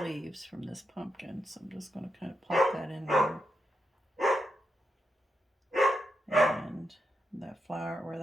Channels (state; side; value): normal; both; correlation 0.84